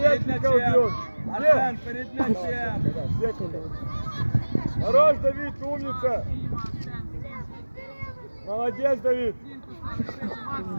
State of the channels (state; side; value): inverted; both; correlation -1.00